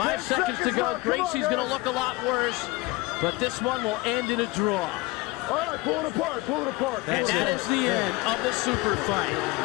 seconds to go. Greisi's going to look a lot worse, but this one will end in a draw. All right, pull it apart. Pull it apart. And that is the end of the super fight.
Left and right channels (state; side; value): quieter; right; 21.5 dB